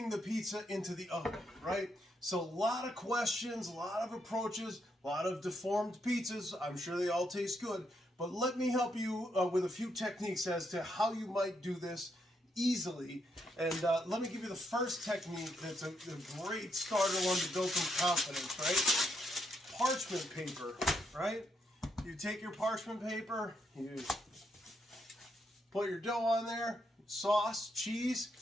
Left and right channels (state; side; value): normal; both; correlation 0.78